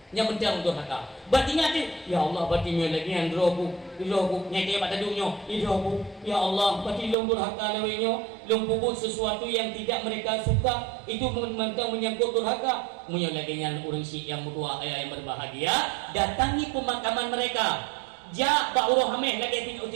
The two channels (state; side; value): drops out; left; at 7.2 s